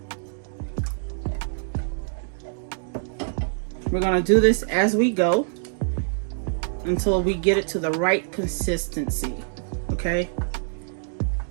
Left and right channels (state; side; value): silent; left; digital silence